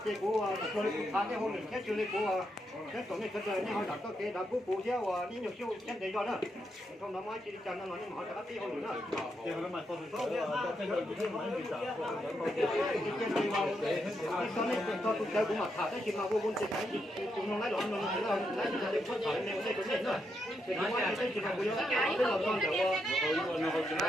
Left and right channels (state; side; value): normal; both; correlation 0.81